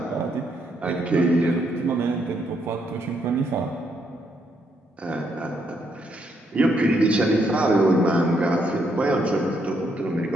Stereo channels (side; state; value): both; normal; correlation 0.75